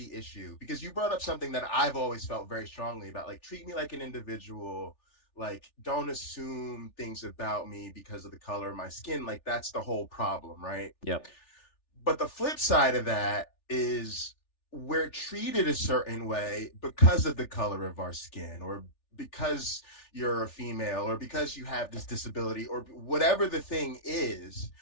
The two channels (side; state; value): right; late; 3.4 ms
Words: issue, because you brought up something that I've always felt very strongly about, like, treat me like an individual. Like, don't assume things about me because of the color of my skin. Like, that's the whole problem, right? Yep. But the flip side of that is we're treated a certain way because of the color of our skin, or because you're a female, or because you have this disability, or whatever the thing is,